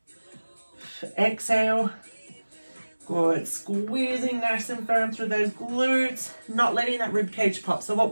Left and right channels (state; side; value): inverted; both; correlation -1.00